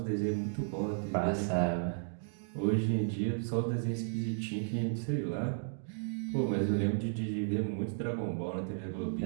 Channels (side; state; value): left; silent; digital silence